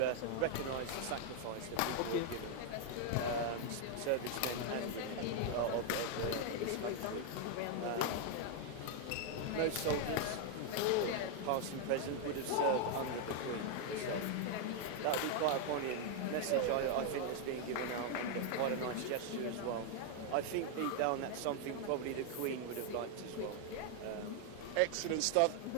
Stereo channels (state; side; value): different; both; correlation 0.00